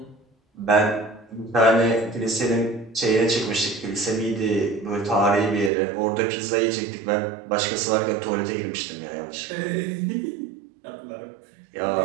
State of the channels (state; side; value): drops out; left; at 5.7 s